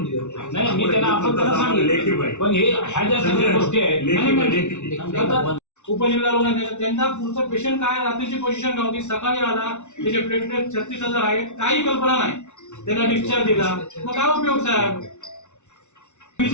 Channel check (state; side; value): late; right; 0.83 ms